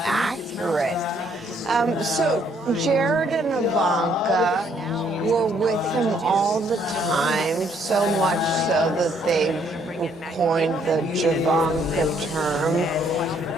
accurate. So Jared and Ivanka were with him all the time, so much so that they coined the Javanka term.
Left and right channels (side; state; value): both; normal; correlation 0.67